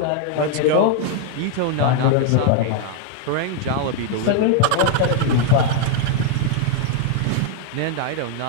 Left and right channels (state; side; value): different; both; correlation 0.00